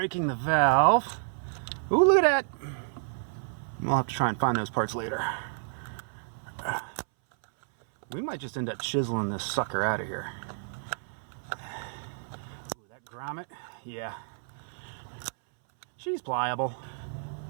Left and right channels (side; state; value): left; silent; 58 dB below the other